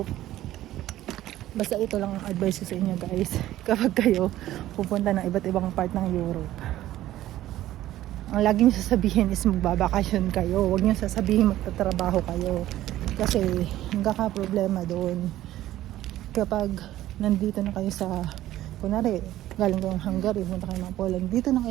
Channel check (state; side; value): quieter; left; 14.2 dB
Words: Basta ito lang ang advice ko sa inyo guys. Kapag kayo pupunta ng iba't ibang part ng Europe, ang lagi nyo sasabihin is magbabakasyon kayo. Huwag nyo sasabihin magtatrabaho kayo. Kasi problema doon. Kapag nandito na kayo sa, kunwari, galing kayong Hungary, punta kayo ng Poland, dito na